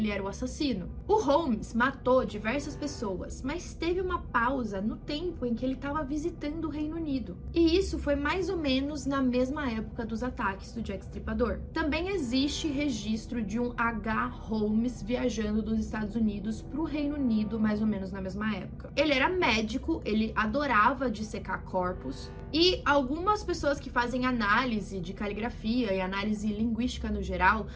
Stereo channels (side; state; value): both; identical; correlation 1.00